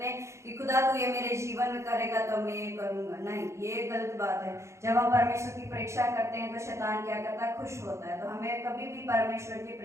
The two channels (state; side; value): late; left; 0.14 ms